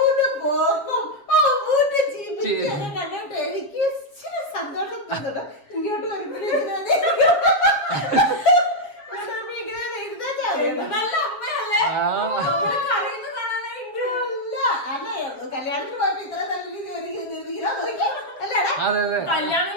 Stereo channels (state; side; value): late; right; 7.3 ms